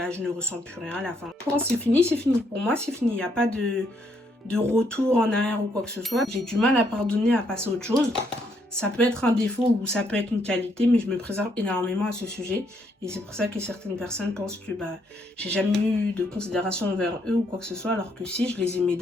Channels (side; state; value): both; normal; correlation 0.73